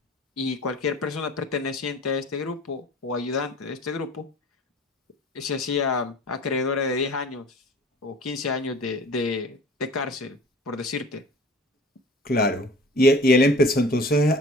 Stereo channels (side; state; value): both; normal; correlation 0.44